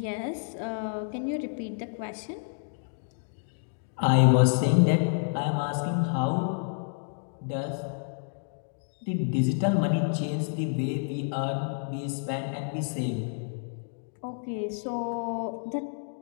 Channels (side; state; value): right; silent; digital silence